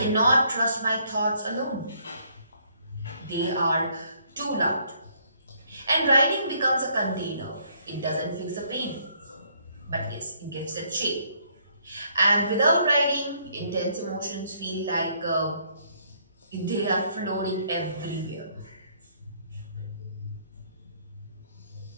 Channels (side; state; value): both; inverted; correlation -0.67